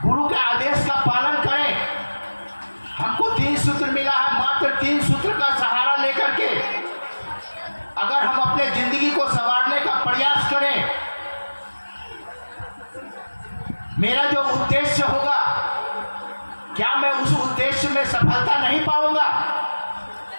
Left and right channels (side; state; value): both; inverted; correlation -1.00